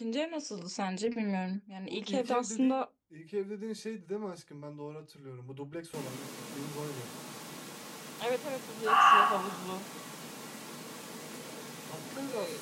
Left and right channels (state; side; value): identical; both; correlation 1.00